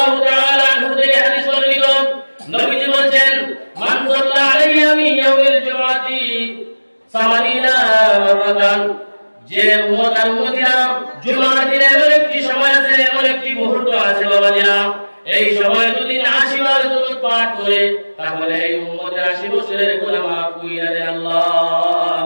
তাআলা আনহু থেকে হাদিস বর্ণিত, নবীজি বলেন, মান সাল্লা আলাইহি মিন ইয়াউমিল জুমআতি 80 মাররাতান। যে উম্মত আর উম্মতিরা জুমার দিনে এমন একটি সময় আছে, এমন একটি মুহূর্ত আছে বাবাজিরা, এই সময় যদি 80 বার দরুদ পাঠ করে তাহলে এই উম্মতের 80 বছরের গুনাহ মাফ কইরা দেয় আল্লাহ।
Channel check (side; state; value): both; inverted; correlation -1.00